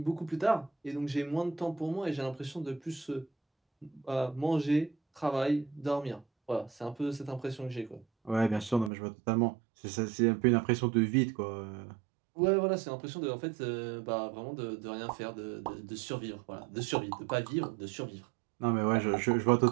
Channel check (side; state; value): left; drops out; at 8.9 s